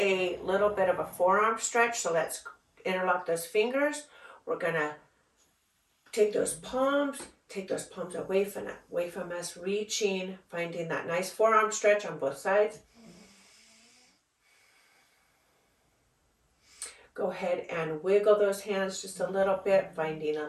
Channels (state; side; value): identical; both; correlation 1.00